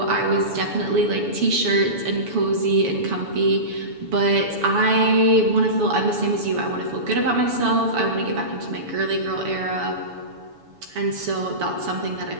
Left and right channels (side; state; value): left; late; 7.0 ms